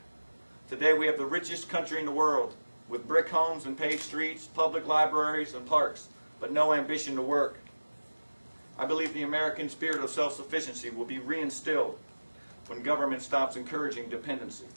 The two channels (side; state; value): both; inverted; correlation -1.00